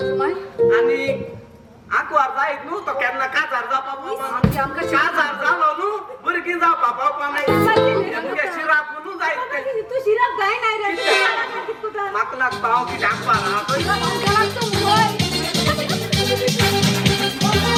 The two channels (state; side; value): identical; both; correlation 1.00